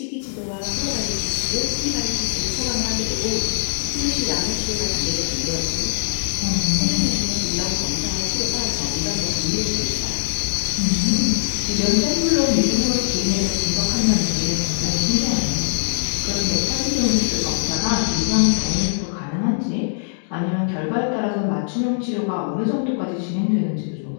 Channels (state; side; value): silent; right; digital silence